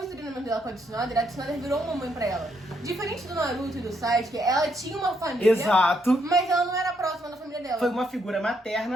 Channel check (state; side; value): normal; both; correlation 0.75